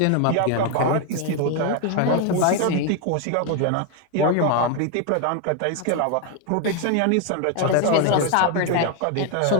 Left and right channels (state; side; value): different; both; correlation 0.01